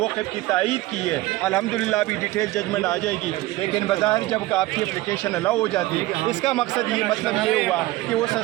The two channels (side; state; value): left; quieter; 18.2 dB